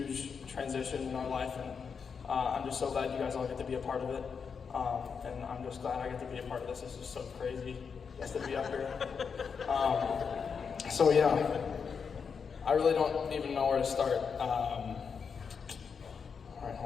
transition in our life, and I'm just so glad you guys all get to be a part of it. And I'm just glad I get to be a part of this. This is so crazy just to be up here. So yeah, I really don't even know where to start. All right,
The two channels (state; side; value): quieter; right; 6.0 dB